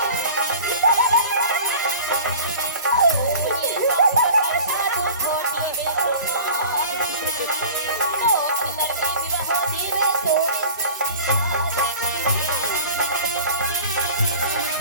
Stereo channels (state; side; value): inverted; both; correlation -0.41